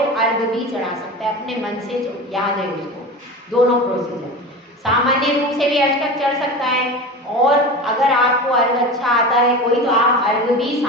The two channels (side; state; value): both; normal; correlation 0.29